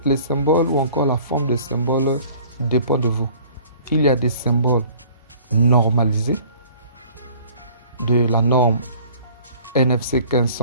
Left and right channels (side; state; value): both; inverted; correlation -0.51